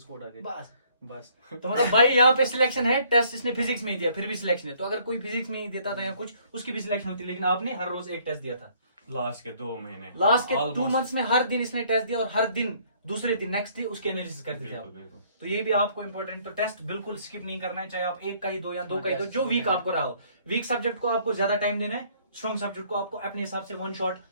कोड आ गए बस। बस। तो मतलब भाई यहाँ पे सिलेक्शन है, टेस्ट इसने फिजिक्स में ही दिया, फिर भी सिलेक्शन है। तो अगर कोई फिजिक्स में ही देता था या कुछ, उसकी भी सिलेक्शन होती, लेकिन आपने हर रोज एक टेस्ट दिया था। लास्ट के 2 महीने, लास्ट के Almost- 2 मंथ्स में हर दिन इसने टेस्ट दिया, और हर दिन दूसरे दिन नेक्स्ट डे उसके एनालिसिस करते थे बिल्कुल, आप। बिल्कुल। तो ये भी आपको इंपॉर्टेंट, तो टेस्ट बिल्कुल स्किप नहीं करना है, चाहे आप एक का ही दो या 2 का ही दो, टेस्ट जो वीक होता है। आपको रहा हो। वीक सब्जेक्ट को आपको ज्यादा टाइम देना है, स्ट्रॉन्ग सब्जेक्ट को आपको अपने हिसाब से वन शॉट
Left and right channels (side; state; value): both; inverted; correlation -0.62